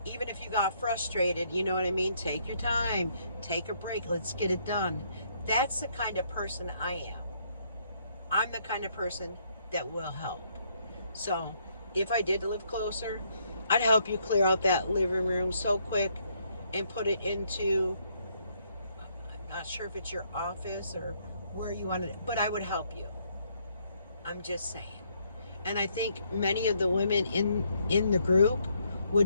even if you got frustrated, you know what I mean? Take your time, take a break, let's get it done. That's the kind of person I am. I'm the kind of person that will help. So if I did live closer, I'd help you clear out that living room so quick and put it into, I'm not sure if it's your office or where you want it, but I would help you. I'm just saying. And I think many of the women in the group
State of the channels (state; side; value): inverted; both; correlation -0.71